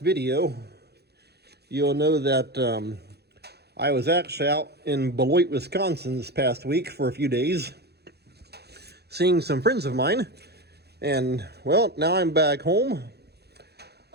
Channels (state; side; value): late; left; 0.48 ms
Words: video, you'll know that I was actually out in Beloit, Wisconsin this past week for a few days, seeing some friends of mine. And, well, now I'm back home.